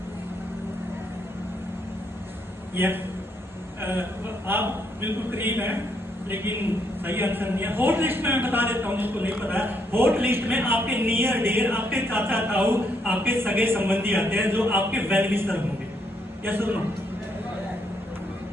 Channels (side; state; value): both; normal; correlation 0.74